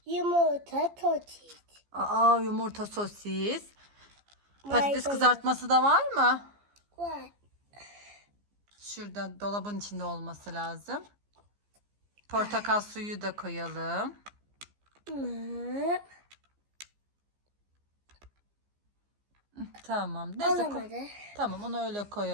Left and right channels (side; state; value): left; late; 15 ms